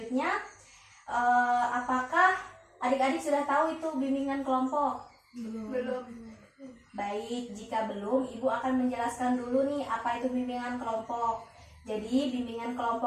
apakah adik-adik sudah tahu itu bimbingan kelompok? Belum. Baik, jika belum, Ibu akan menjelaskan dulu nih apa itu bimbingan kelompok. Jadi, bimbingan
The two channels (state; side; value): identical; both; correlation 1.00